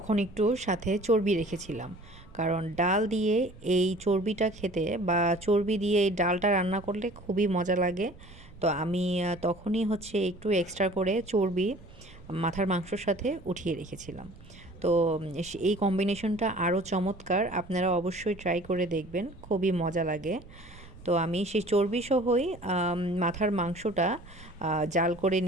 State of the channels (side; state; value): right; noise; rumble, 20 dB below the sound